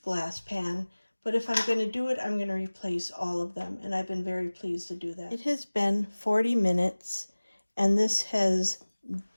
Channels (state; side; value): inverted; both; correlation -1.00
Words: glass pan, but if I'm going to do it, I'm going to replace all of them. And I've been very pleased to do that. It has been 40 minutes and this has